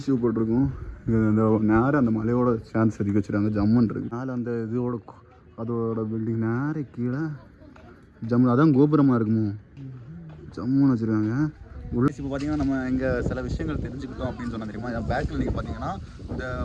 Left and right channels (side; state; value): both; identical; correlation 1.00